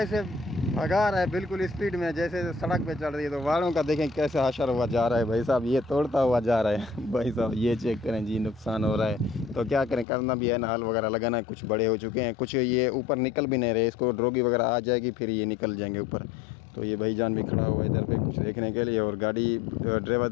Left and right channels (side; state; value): right; drops out; at 10.1 s